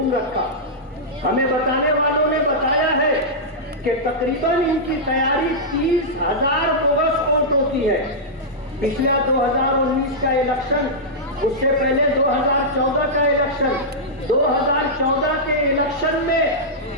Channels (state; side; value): normal; both; correlation -0.11